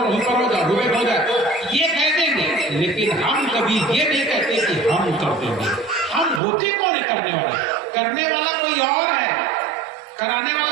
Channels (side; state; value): left; drops out; at 6.4 s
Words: हुई पर हो जाए, हुए हो जाए, ये कह देंगे। लेकिन हम कभी ये नहीं कहते कि हम कर देंगे। हम होते कौन है करने वाला कोई और है, कराने